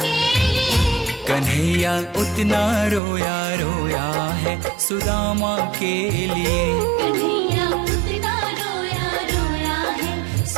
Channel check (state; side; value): drops out; left; at 3.0 s